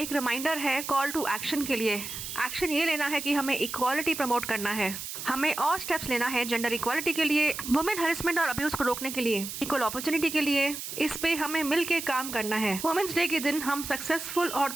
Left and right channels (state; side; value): noise; right; hiss, 8 dB below the sound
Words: रिमाइंडर है कॉल टू एक्शन के लिए। एक्शन ये लेना है कि हमें इक्वालिटी प्रमोट करना है, हमें और स्टेप्स लेना है जेंडर इक्वालिटी के लिए, वुमेन हरेसमेंट और अब्यूज़ को रोकने के लिए, इक्वल अपॉर्चुनिटी के लिए। इस पे हमें मिल के काम करना है। वुमेन्स डे के दिन हम सक्सेसफुल